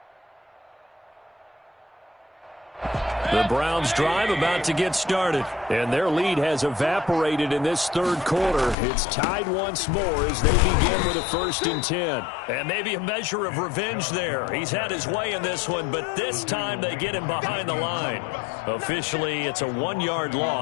The Browns drive about to get started, and their lead has evaporated in this 3rd quarter. It's tied once more as they begin with a 1st and 10. And maybe a measure of revenge there. He's had his way in this one, but this time they get him behind the line. Officially, it's a 1-yard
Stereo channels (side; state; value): right; drops out; at 8.8 s